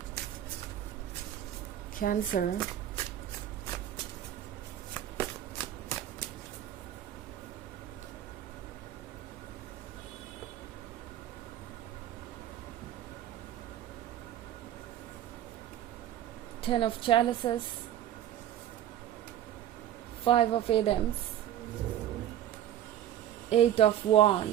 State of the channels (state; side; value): quieter; left; 11.5 dB